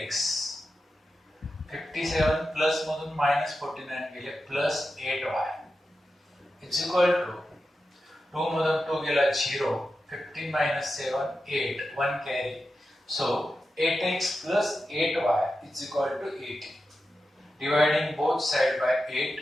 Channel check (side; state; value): both; normal; correlation 0.91